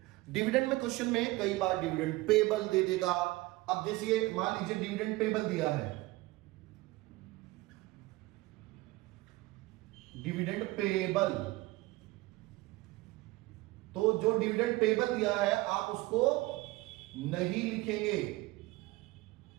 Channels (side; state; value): left; quieter; 20.2 dB